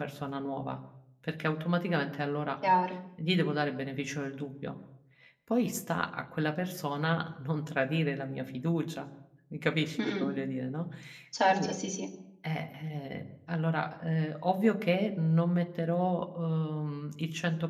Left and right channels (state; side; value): identical; both; correlation 1.00